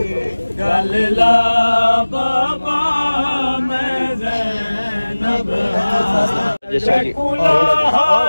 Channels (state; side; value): inverted; both; correlation -1.00